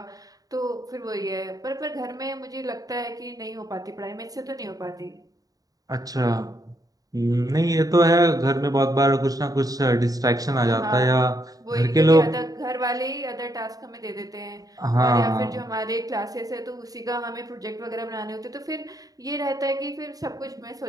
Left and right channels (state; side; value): late; left; 0.18 ms